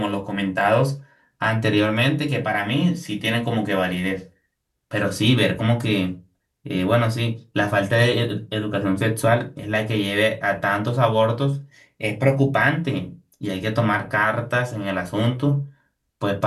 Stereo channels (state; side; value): identical; both; correlation 1.00